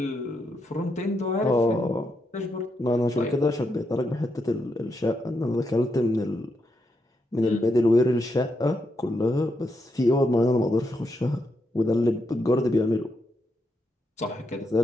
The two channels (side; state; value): both; normal; correlation 0.82